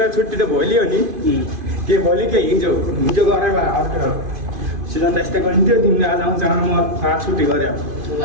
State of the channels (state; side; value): late; left; 2.5 ms